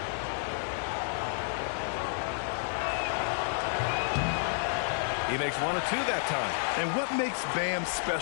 He makes 1 of 2 that time. And what makes Bam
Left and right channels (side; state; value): right; silent; 57 dB below the other